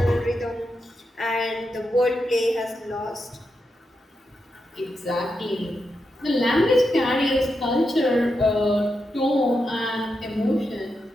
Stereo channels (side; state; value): both; normal; correlation 0.86